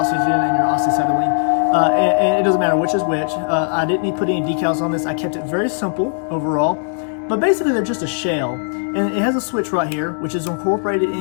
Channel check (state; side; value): silent; right; digital silence